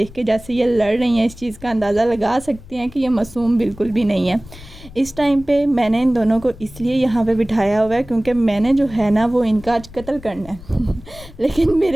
के जैसे ये लड़ रही हैं इस चीज़ का अंदाज़ा लगा सकते हैं कि ये मासूम बिल्कुल भी नहीं है। इस टाइम पे मैंने इन दोनों को इसलिए यहाँ पे बिठाया हुआ है क्योंकि मैंने जो है ना वो इनका आज कत्ल करना है लेकिन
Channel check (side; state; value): left; noise; rumble, 18 dB below the sound